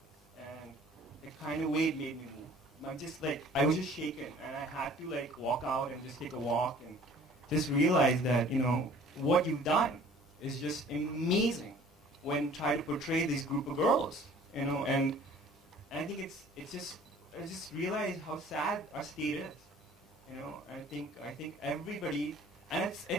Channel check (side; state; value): both; normal; correlation 0.51